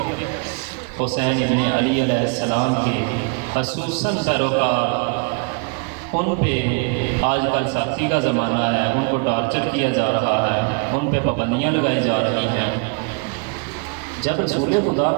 حسین ابن علی علیہ السلام کے خصوصاً پیروکار، ان پہ آج کل سختی کا زمانہ ہے، ان کو ٹارچر کیا جا رہا ہے، ان پہ پابندیاں لگائی جا رہی ہیں۔ جب رسول خدا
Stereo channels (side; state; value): left; quieter; 33.9 dB